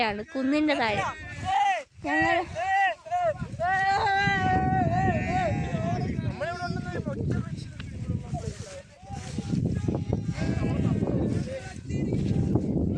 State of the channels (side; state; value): both; identical; correlation 1.00